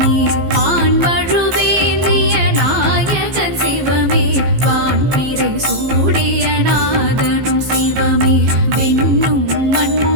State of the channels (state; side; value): late; left; 15 ms